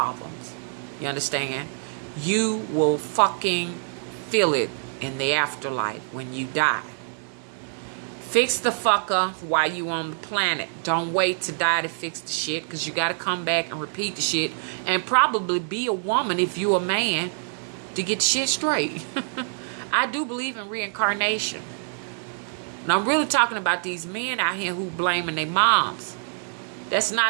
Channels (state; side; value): silent; left; digital silence